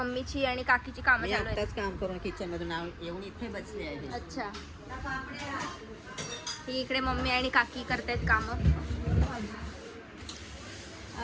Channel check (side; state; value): both; identical; correlation 1.00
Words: आणि काकीची कामं चालू आहेत. आताच काम करून किचन मधून येऊन इथे बसले आहे. अच्छा, ही इकडे मम्मी आणि काकी करतायत कामं.